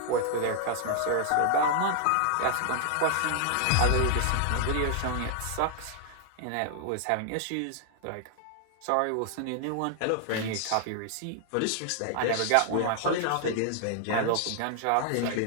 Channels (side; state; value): both; different; correlation 0.00